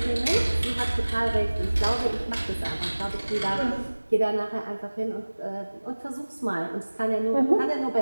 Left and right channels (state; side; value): inverted; both; correlation -1.00